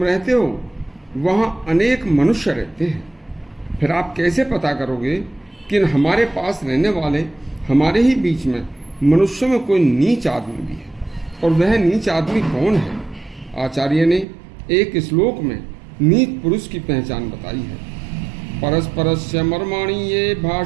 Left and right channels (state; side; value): drops out; left; at 14.2 s